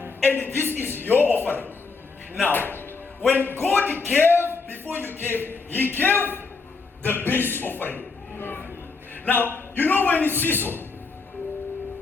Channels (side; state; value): right; quieter; 4.4 dB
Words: And this is your offering. Now, when God gave, before you gave, He gave the base offering. Now, you know when it's seesaw,